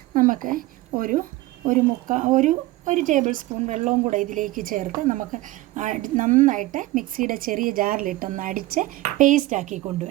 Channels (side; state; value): left; quieter; 18.1 dB